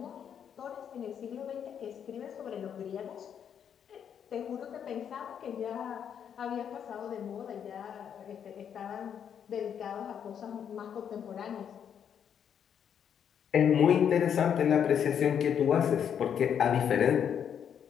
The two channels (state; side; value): quieter; right; 8.3 dB